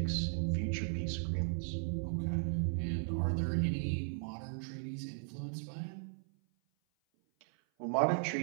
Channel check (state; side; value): silent; left; 53 dB below the other